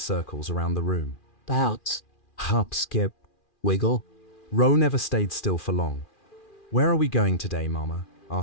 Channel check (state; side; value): late; right; 2.4 ms